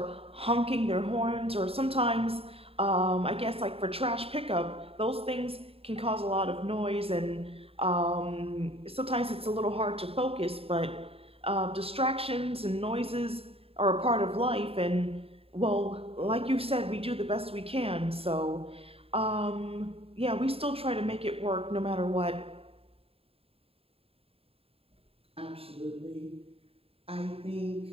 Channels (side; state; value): left; late; 0.28 ms